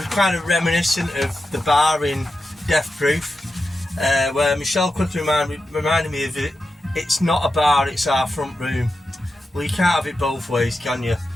kind of reminiscent of the bar in Death Proof, where Michelle quickly reminded me of it. It's not a bar, it's our front room. Well, you can't have it both ways, can you?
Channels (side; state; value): both; normal; correlation 0.90